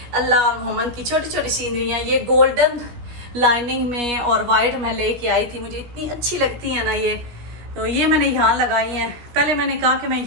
अल्लाह मोहम्मद की छोटी छोटी सीनरियाँ। ये गोल्डन लाइनिंग में और वाइट मैं लेके आई थी, मुझे इतनी अच्छी लगती है ना ये। तो ये मैंने यहाँ लगाई हैं। पहले मैंने कहा कि मैं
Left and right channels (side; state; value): left; late; 16 ms